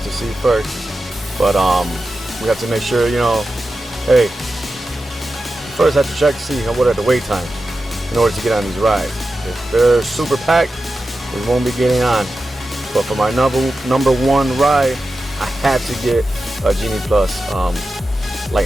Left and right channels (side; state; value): both; normal; correlation 0.92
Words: to see first. But we have to make sure, you know, hey, first have to check to see what are the wait times in order to get on these rides. If they're super packed, we won't be getting on. But for my number 1 ride, I had to get a Genie Plus